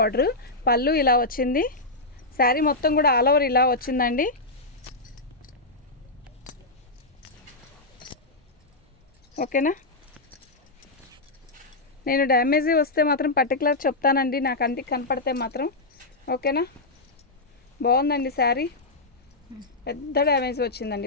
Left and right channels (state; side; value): quieter; right; 3.0 dB